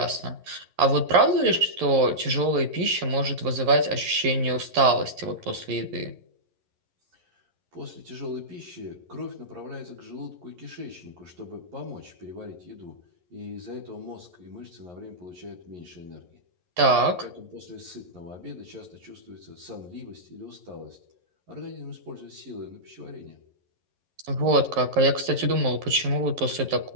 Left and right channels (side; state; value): left; late; 11 ms